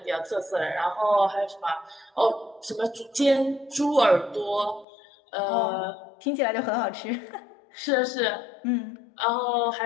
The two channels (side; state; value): right; drops out; at 4.9 s